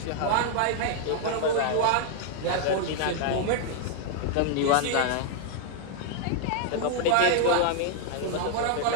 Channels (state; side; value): different; both; correlation 0.00